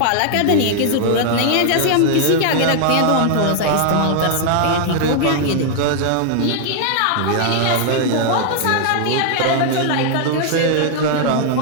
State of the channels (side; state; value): both; different; correlation 0.00